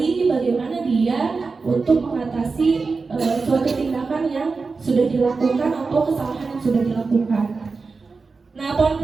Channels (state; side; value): quieter; left; 4.4 dB